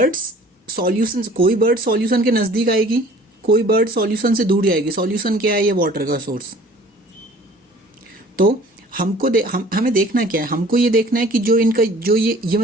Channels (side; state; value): both; normal; correlation 0.50